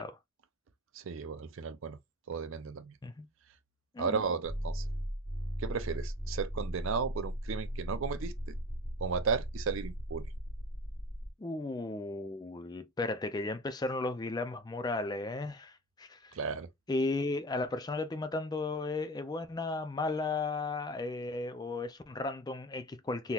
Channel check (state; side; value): normal; both; correlation 0.31